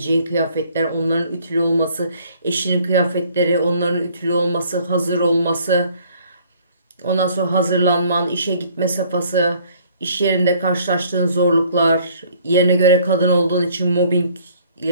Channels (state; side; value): inverted; both; correlation -0.59